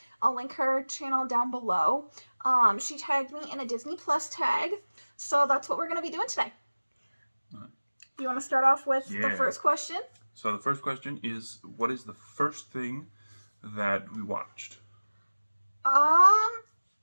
I'll link her channel down below. She tagged me in a Disney Plus tag, so that's what we're going to be doing today. You want to start off with the first question? So the first question is, what is the first thing that we watched?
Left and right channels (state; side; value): inverted; both; correlation -1.00